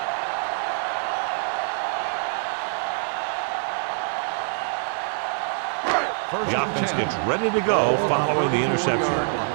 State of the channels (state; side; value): silent; left; 62 dB below the other